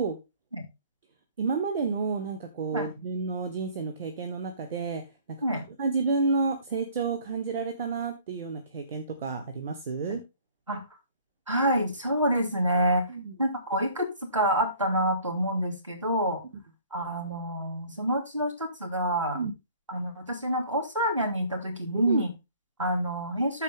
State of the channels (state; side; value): inverted; both; correlation -0.53